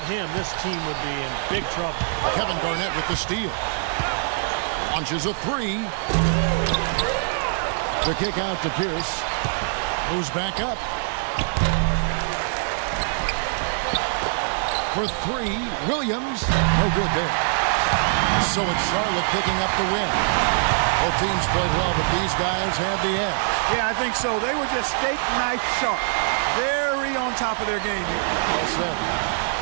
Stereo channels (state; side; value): silent; left; digital silence